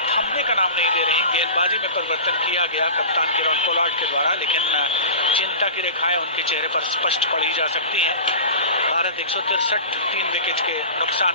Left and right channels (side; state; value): both; inverted; correlation -0.33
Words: का नाम नहीं ले रही। गेंदबाजी में परिवर्तन किया गया कप्तान किरण पोलार्ड के द्वारा, लेकिन चिंता की रेखाएं उनके चेहरे पर स्पष्ट पड़ी जा सकती हैं। भारत 163 3 विकेट के नुकसान